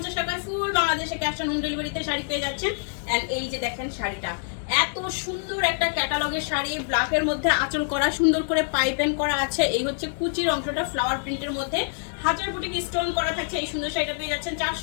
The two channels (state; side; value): silent; right; digital silence